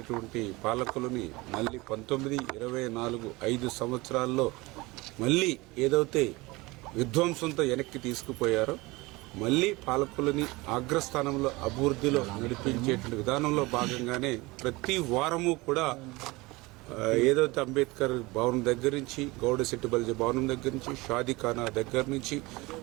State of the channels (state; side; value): quieter; left; 22.7 dB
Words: పాలకులని మళ్ళీ 19, 24, 5 సంవత్సరాల్లో మళ్ళీ ఏదైతే విధ్వంసంతో వెనక్కి తీసుకుపోయారో మళ్ళీ పాలకులని అగ్రస్థానంలో అభివృద్ధిలో నడిపించేటువంటి విధానంలో భాగంగానే ప్రతి వారము కూడా ఏదైతే అంబేద్కర్ భవనం దగ్గర నుంచి గౌడ సెట్టిబల్జీ భవనం దగ్గర నుంచి షాదీఖానా దగ్గర నుంచి